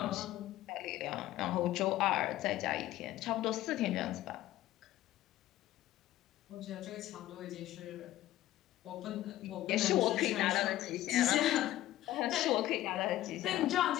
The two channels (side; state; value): right; quieter; 14.6 dB